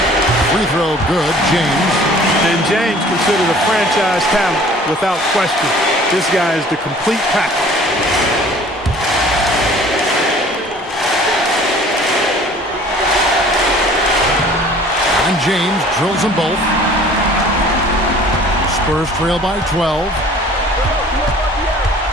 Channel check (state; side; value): normal; both; correlation 0.50